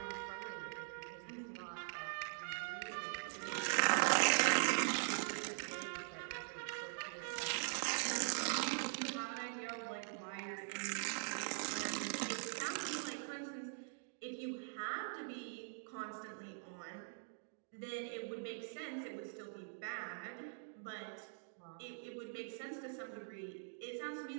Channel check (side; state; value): left; silent; digital silence